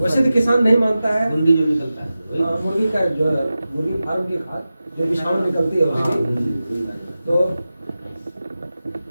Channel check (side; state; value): both; inverted; correlation -0.94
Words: वैसे तो किसान नहीं मानता है। गुंडी जो निकलता है, मुर्गी का जो मुर्गी फार्म की खाद जो विषाणु निकलती है उसकी, तो